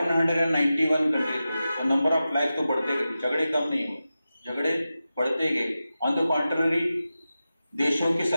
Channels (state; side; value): inverted; both; correlation -0.93